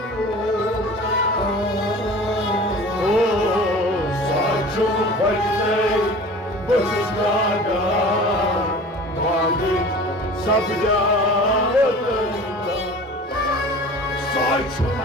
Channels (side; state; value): both; normal; correlation 0.41